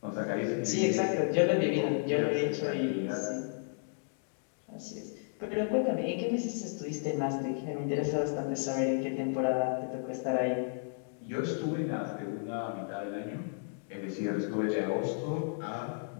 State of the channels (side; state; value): right; silent; digital silence